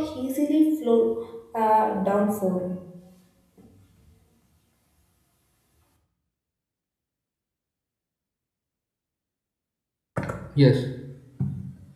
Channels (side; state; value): both; identical; correlation 1.00